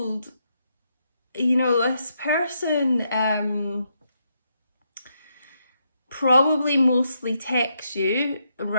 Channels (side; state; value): both; inverted; correlation -0.79